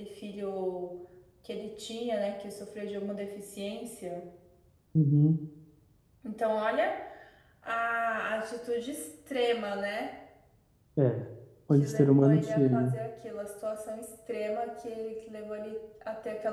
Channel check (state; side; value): identical; both; correlation 1.00